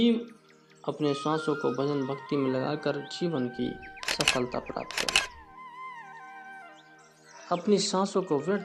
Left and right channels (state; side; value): identical; both; correlation 1.00